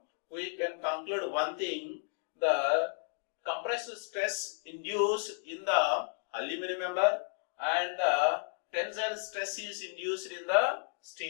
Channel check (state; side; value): silent; right; 56 dB below the other